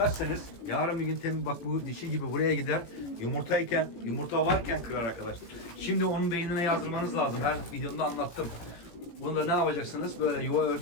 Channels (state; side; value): late; right; 18 ms